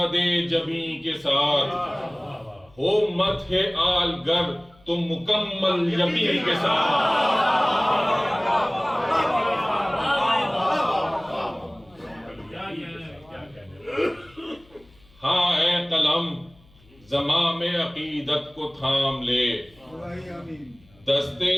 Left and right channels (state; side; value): noise; left; hum, 29 dB below the sound